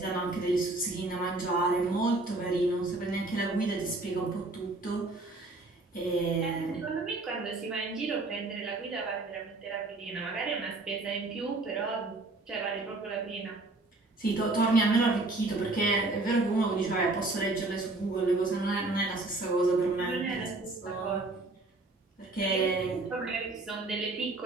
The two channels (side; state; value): left; quieter; 3.0 dB